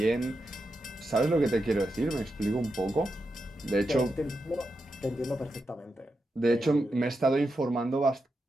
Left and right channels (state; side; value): normal; both; correlation 0.87